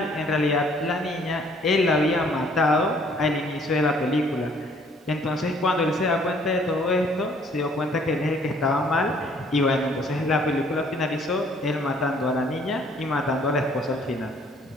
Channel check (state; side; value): normal; both; correlation 0.60